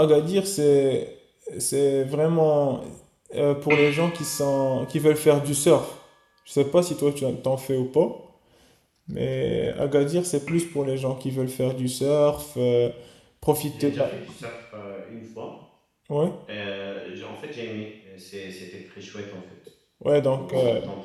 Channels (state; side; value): identical; both; correlation 1.00